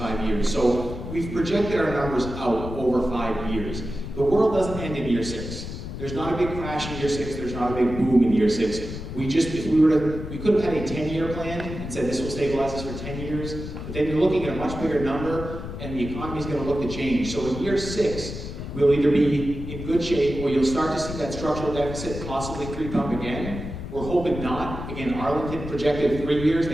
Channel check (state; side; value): noise; left; rumble, 8 dB below the sound